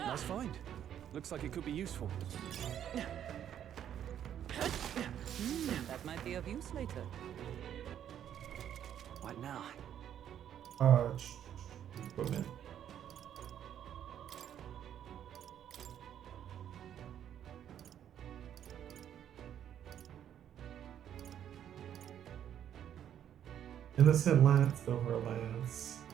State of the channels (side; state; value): left; quieter; 10.0 dB